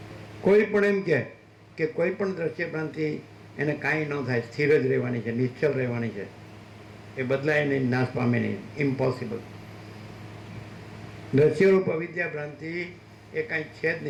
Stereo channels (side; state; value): both; identical; correlation 1.00